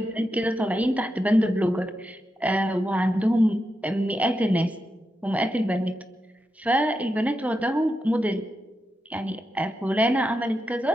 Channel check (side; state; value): both; normal; correlation 0.87